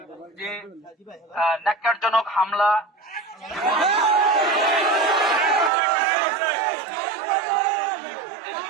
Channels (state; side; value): drops out; left; at 5.7 s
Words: যে ন্যাক্কারজনক হামলা,